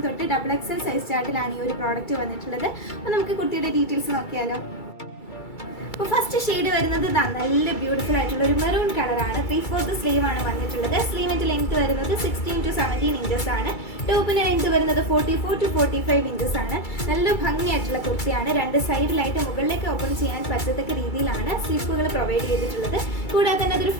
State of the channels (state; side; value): late; right; 2.3 ms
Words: തൊട്ട് XXL സൈസ് ചാർട്ടിലാണ് ഈ ഒരു പ്രോഡക്റ്റ് വന്നിട്ടുള്ളത്. അപ്പോൾ നമുക്ക് കുർത്തിയുടെ ഡീറ്റെയിൽസ് നോക്കിയാലോ. അപ്പോൾ ഫസ്റ്റ് ഷെയ്ഡ് വരുന്നത് നല്ല ബ്യൂട്ടിഫുൾ ആയിട്ടുള്ള ഒരു മെറൂൺ കളറാണ്. 3/4 സ്ലീവ് ആണ് വന്നിട്ടുള്ളത്. സ്ലീവിന്റെ ലെങ്ത് വരുന്നത് 16 to 17 ഇഞ്ചസ് ആണ്. ടോപ്പിന്റെ ലെങ്ത് വരുന്നത് 44 to 45 ഇഞ്ചസ് ആണ്. നല്ല ഭംഗിയായിട്ടുള്ള കുർത്തിയാണ്. 2 സൈഡിലായിട്ട് മുകളിലേക്ക് ഓപ്പൺ ചെയ്യാൻ പറ്റത്തക്ക രീതിയിലാണ് സ്ലിപ്പുകൾ പ്രൊവൈഡ് ചെയ്തിട്ടുള്ളത്. കൂടാതെ തന്നെ അതൊരു